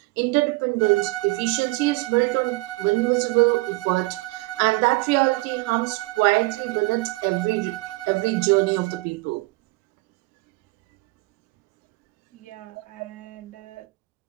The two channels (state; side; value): quieter; left; 22.2 dB